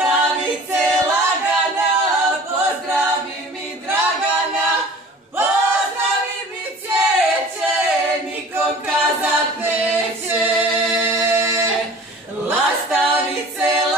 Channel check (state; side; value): normal; both; correlation 0.44